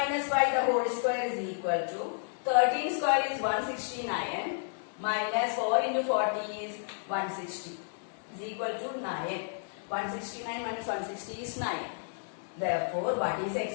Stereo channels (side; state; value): right; silent; digital silence